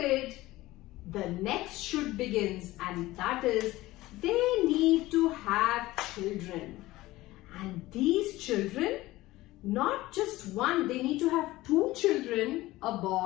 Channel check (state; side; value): quieter; right; 17.9 dB